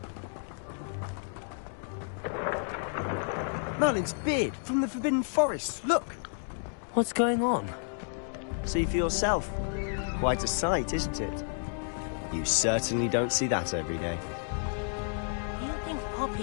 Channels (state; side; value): silent; right; 57 dB below the other